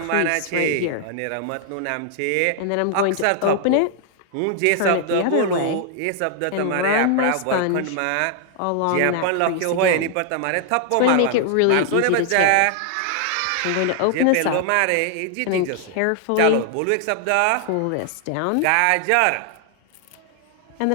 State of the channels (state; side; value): different; both; correlation 0.00